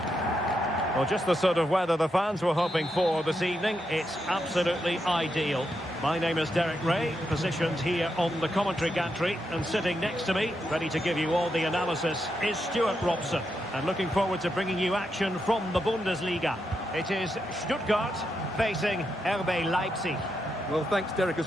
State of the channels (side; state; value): both; normal; correlation 0.83